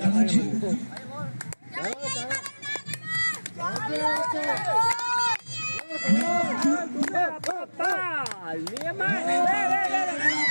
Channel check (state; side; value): inverted; both; correlation -1.00